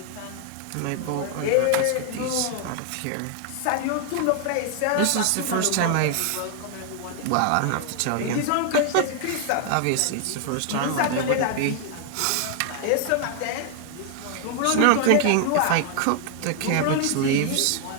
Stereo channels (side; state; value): both; different; correlation 0.00